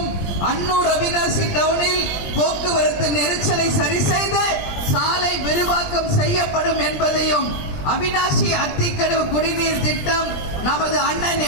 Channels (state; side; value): late; right; 20 ms